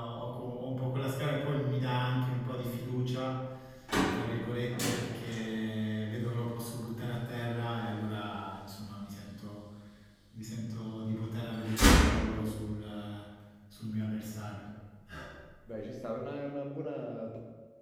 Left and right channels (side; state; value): both; identical; correlation 1.00